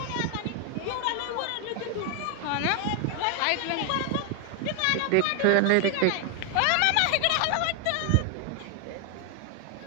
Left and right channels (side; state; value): both; different; correlation 0.00